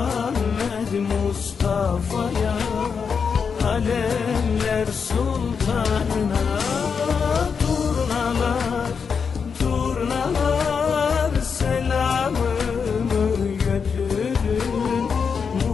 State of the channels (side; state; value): right; quieter; 6.0 dB